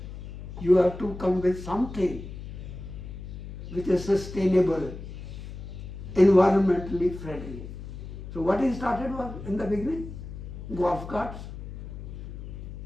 You have to come with something which is sustainable, environmentally friendly. So what he started was, in the beginning, golf carts.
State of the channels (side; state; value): left; noise; hum, 10 dB below the sound